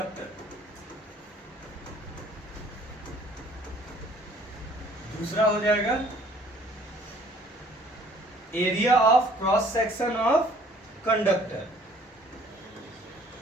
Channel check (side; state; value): both; normal; correlation 0.57